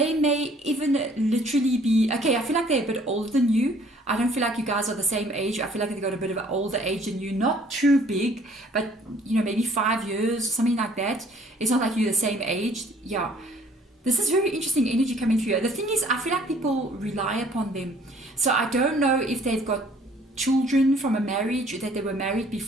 may even literally be, okay, I feel like they're a bit older than you. I don't feel like you guys are the same age. I feel like they've got a bit of an older age than you. Not too big, but maybe 5 years, something like that. It's not like you're the same age. Yeah. This is very interesting energy coming through. The thing is, I feel like people rely upon them. So I don't know if they've got children from a marriage, that they were married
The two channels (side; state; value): both; normal; correlation 0.58